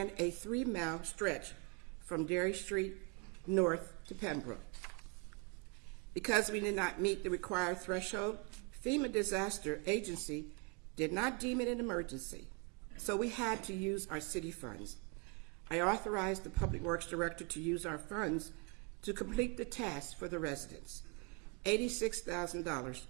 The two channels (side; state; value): left; quieter; 31.4 dB